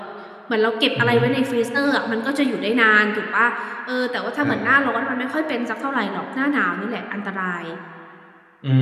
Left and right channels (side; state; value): both; identical; correlation 1.00